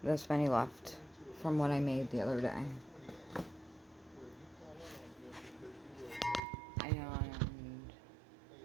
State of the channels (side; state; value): left; drops out; at 6.4 s